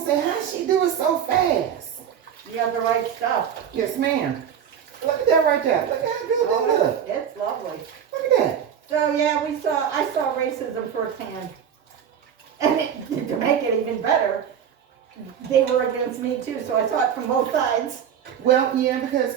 how she do it so fast? You got the right stuff. Yes, ma'am. Look at that right there. Look how good that Oh, look. it's lovely. Look at that. So yeah, I saw racism firsthand. And to make it even better, they were against me too, so I saw it from both sides. Well, yeah, because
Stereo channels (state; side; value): quieter; left; 8.6 dB